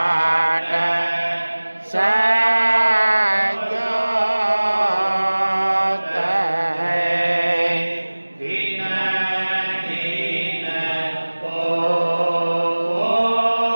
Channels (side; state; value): both; inverted; correlation -1.00